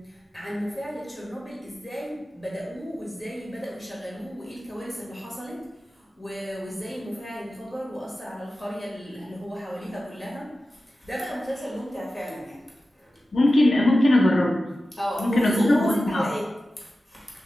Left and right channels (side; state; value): both; normal; correlation 0.94